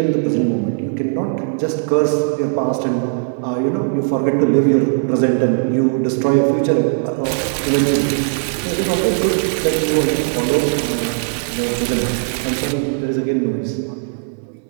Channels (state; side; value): silent; left; 67 dB below the other